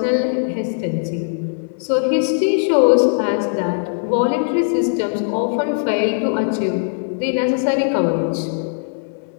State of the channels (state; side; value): silent; right; 63 dB below the other